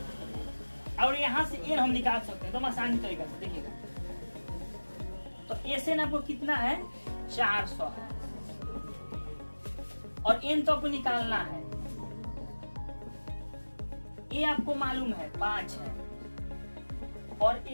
और यहाँ से एन हम निकाल सकते हैं तो आसानी तरीका से। देखिएगा, तो एसएन आपको कितना है 400 है और एन तो आपको निकालना है। ए आपको मालूम है 5 है और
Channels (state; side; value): inverted; both; correlation -1.00